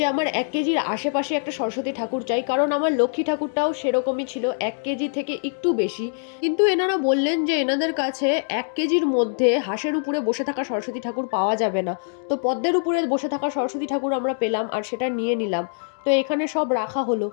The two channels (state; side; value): silent; right; digital silence